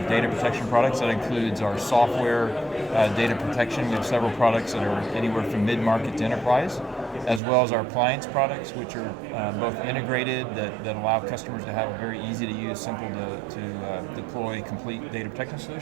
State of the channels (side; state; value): left; drops out; at 7.4 s